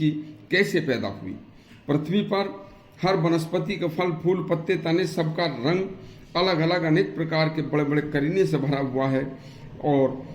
कैसे पैदा हुई। पृथ्वी पर हर वनस्पति के फल, फूल, पत्ते, तने सबका रंग अलग अलग अनेक प्रकार के बड़े बड़े करीने से भरा हुआ है, और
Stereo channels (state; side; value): identical; both; correlation 1.00